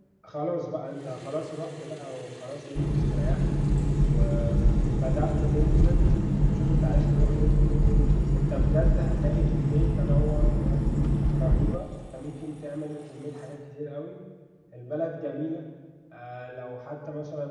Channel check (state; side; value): identical; both; correlation 1.00